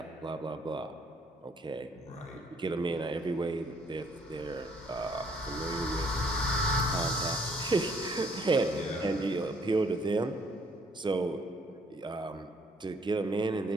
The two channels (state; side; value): normal; both; correlation 0.65